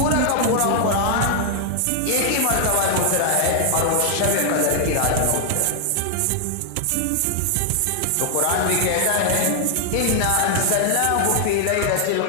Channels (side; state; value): both; different; correlation 0.00